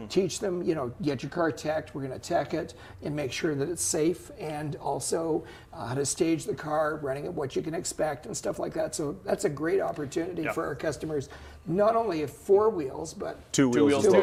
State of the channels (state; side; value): identical; both; correlation 1.00